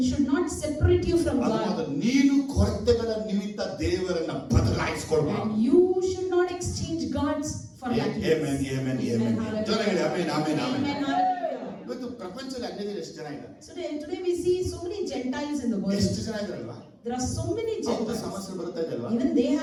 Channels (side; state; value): both; identical; correlation 1.00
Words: should not separate you from ಅದಾದ God. ನೀನು ಕೊರತೆಗಳ ನಿಮಿತ್ತ ದೇವರನ್ನ ಬದಲಾಯಿಸಿಕೊಳ್ಳಬಾರದು. And you should not exchange God's for lackingness. Amen, amen, amen. ಜನ ಹೇಳಿ amen, amen, amen. Amen, hallelujah. ಇವತ್ತು ಪ್ರಪಂಚದಲ್ಲಿ ಅನ್ಯಜನರು ಎಷ್ಟು ಜನ ಇದ್ದಾರೆ? Today we see so many Gentiles in the world. ಎಷ್ಟು ಜನ ಇದ್ದಾರಲ್ವಾ? There are so many ಅವ್ರ Gentiles. ಸಮಸ್ಯೆ ಬರ್ತಾ ಇದಲ್ವಾ? Even they